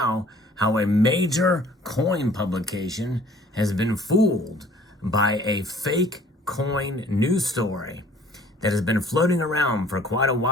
how a major coin publication has been fooled by a fake coin news story that has been floating around for quite a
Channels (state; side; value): normal; both; correlation 0.54